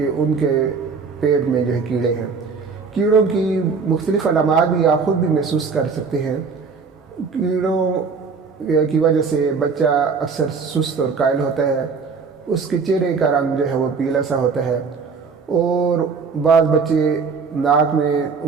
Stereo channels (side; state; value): left; quieter; 5.1 dB